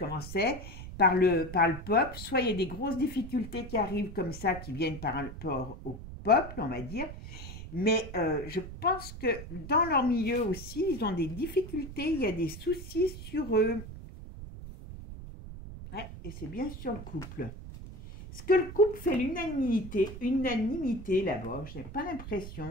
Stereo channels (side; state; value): right; noise; rumble, 11 dB below the sound